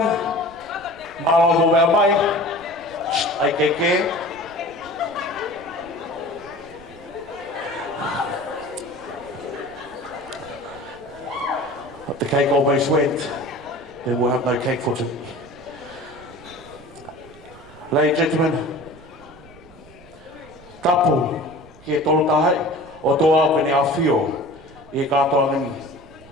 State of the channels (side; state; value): right; noise; rumble, 23 dB below the sound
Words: Malo Mobile IKK. But the cake almost went. Then we'll have no cake for today. Ladies and gentlemen, tapu ki tolu tahai o toa kene awhio I katoa ngi.